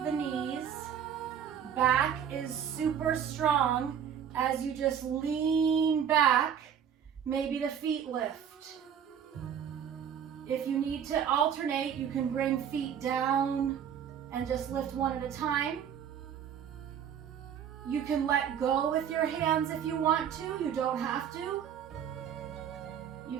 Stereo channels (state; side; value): quieter; left; 8.6 dB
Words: the knees. Back is super strong as you just lean back. Maybe the feet lift. If you need to alternate, you can bring feet down and just lift one at a time. You can let go with your hands if you want to. You don't have to.